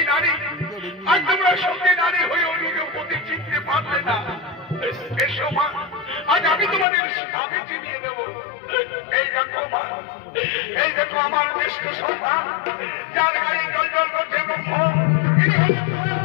নারী, আজ তোমরা সঙ্গী নারী হয়েও নিজের প্রতি চিনতে পারলে না। এসো মা, আজ আমি তোমাদের স্বামী চিনিয়ে দেব। এই দেখো মা, এই দেখো আমার জ্যেষ্ঠ সন্তান, যার গায়ে জল জল করছে ব্রহ্ম,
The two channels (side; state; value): right; drops out; at 6.9 s